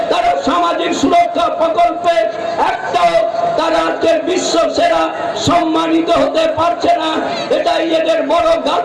তারা সামাজিক সুরক্ষা প্রকল্পে একটাও তারা আজকের বিশ্ব সেরা সম্মানিত হতে পারছে না। এটাই এদের বড়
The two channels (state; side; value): identical; both; correlation 1.00